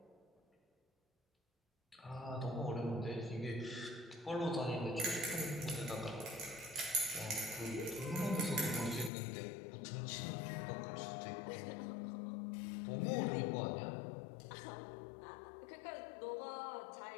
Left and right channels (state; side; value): drops out; right; at 9.1 s